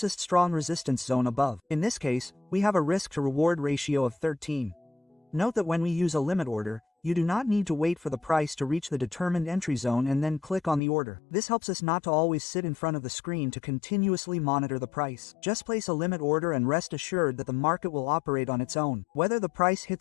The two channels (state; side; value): drops out; right; at 10.8 s